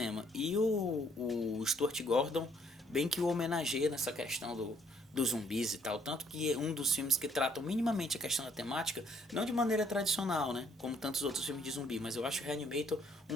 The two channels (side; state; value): both; normal; correlation 0.66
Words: E o Stuart Gordon bem que o homenageia nessa questão dos zumbis e tal, tanto que é um dos filmes que tratam minimamente a questão da temática, não de maneira tradicional, né, como tantos outros filmes de zumbi, mas eu acho o Reanimator